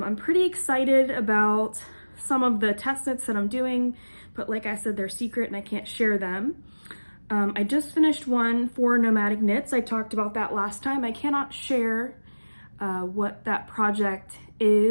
pretty excited about some of the test knits that I'm doing, but like I said, they're secret and I can't share them. I just finished one for Nomadic Knits. I talked about that last time. I cannot share what that project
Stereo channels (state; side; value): inverted; both; correlation -1.00